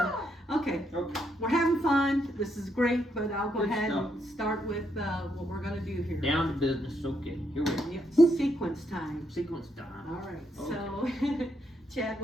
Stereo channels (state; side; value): normal; both; correlation 0.77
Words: okay. We're having fun. This is great, but I'll go ahead and start with what we're going to do here. Down to business. Okay. Here we go. Yep. Sequence time. Sequence time. All right. Okay. So, Chad,